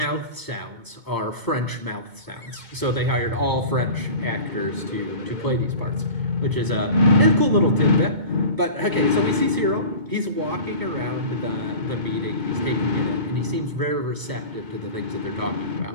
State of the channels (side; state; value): left; late; 2.2 ms